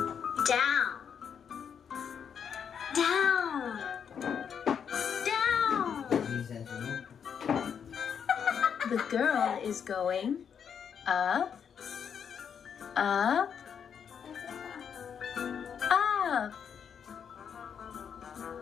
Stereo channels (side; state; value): right; quieter; 7.5 dB